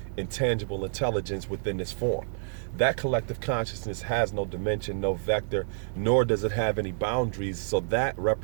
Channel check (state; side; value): silent; left; digital silence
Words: intangible intelligence within this form. That collective consciousness has no dimension, no vector, nor does it have any boundaries, so that